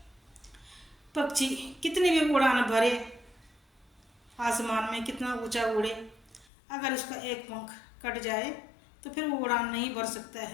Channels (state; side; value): drops out; right; at 6.5 s